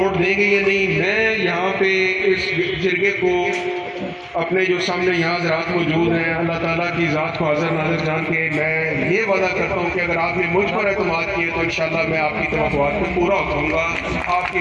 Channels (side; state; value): both; identical; correlation 1.00